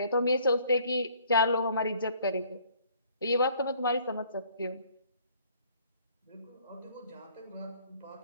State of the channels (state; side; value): inverted; both; correlation -0.58